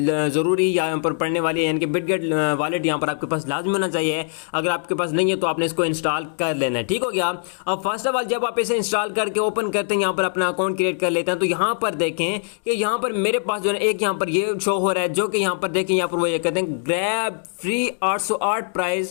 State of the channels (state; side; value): silent; right; digital silence